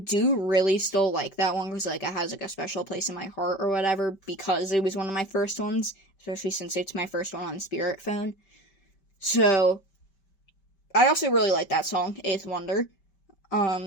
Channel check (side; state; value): right; late; 5.2 ms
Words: really still like that one, because, like, it has, like, a special place in my heart or whatever, because it was one of my first ones, especially since it's my first one on Spirit Phone. So, I also really like that song, Eighth Wonder.